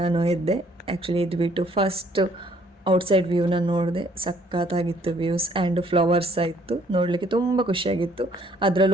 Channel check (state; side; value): normal; both; correlation 0.63